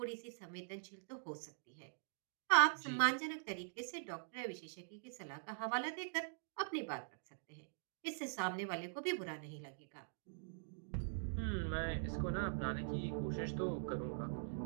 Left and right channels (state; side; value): silent; left; digital silence